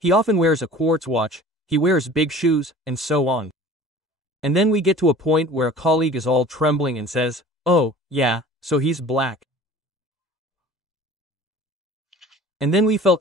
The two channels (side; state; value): both; normal; correlation 0.44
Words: often wears a quartz watch, he wears big shoes, and so on. And then we get to a point where a colleague is all trembling and says, oh, yeah, so he's black. And then we